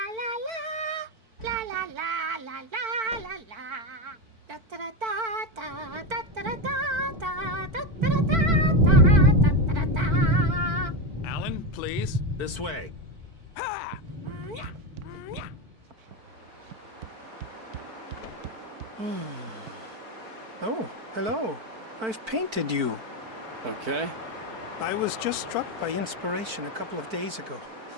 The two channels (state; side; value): late; left; 4.5 ms